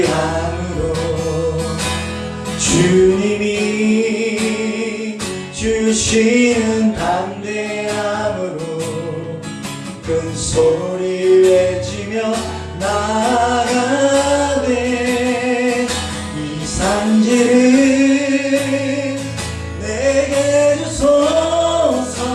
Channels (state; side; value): identical; both; correlation 1.00